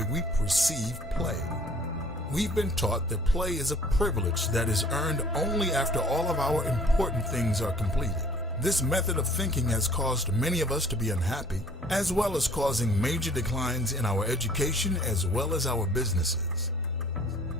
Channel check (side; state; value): both; normal; correlation 0.54